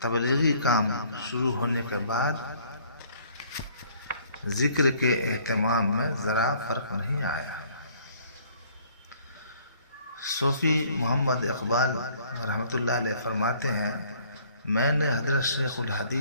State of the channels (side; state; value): both; inverted; correlation -0.59